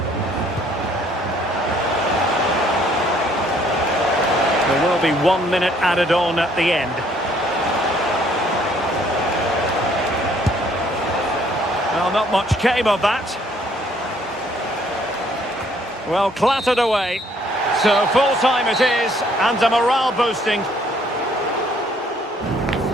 There will be 1 minute added on at the end. Well, not much came of that. Well, clattered away. So full time it is, and a morale boosting.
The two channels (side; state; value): both; normal; correlation 0.63